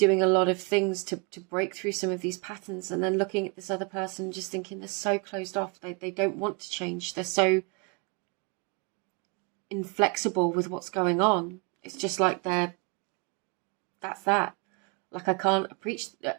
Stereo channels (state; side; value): quieter; left; 33.7 dB